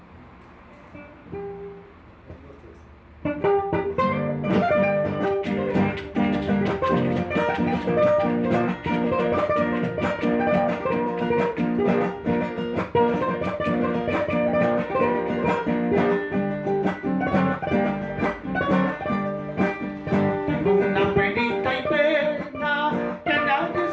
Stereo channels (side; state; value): both; identical; correlation 1.00